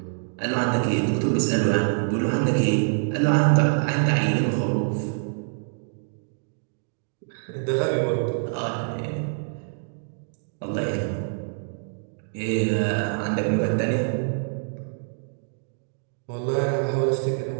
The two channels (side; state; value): left; silent; digital silence